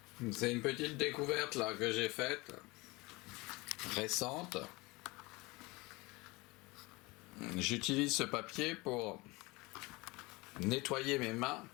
C'est une petite découverte là que j'ai faite, récente. J'utilise ce papier pour nettoyer mes mains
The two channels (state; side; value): quieter; right; 23.8 dB